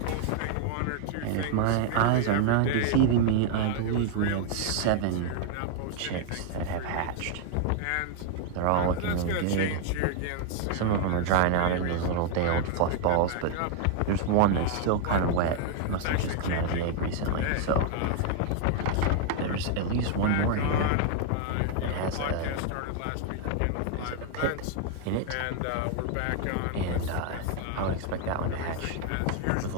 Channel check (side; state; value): both; different; correlation 0.00